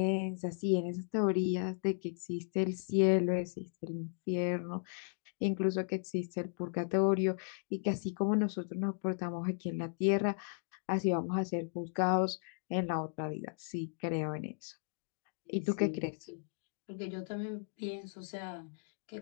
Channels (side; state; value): right; silent; digital silence